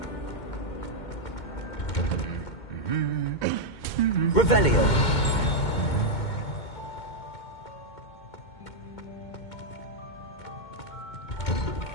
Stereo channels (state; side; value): late; right; 2.2 ms